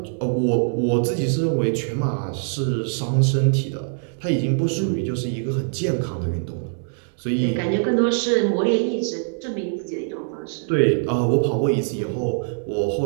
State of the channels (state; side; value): silent; left; digital silence